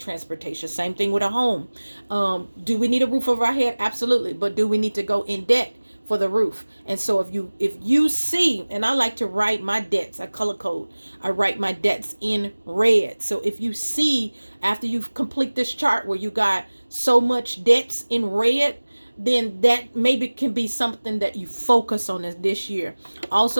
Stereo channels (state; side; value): inverted; both; correlation -1.00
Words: Same thing with a home. Do we need a roof over our head? Absolutely, but do we need to go in debt for the roof? And so if you see, and I like to write my debts, I color code, I write my debts in red. So if you see after you complete this chart where you got so much debts in red, then that maybe can be something that you focus on this year.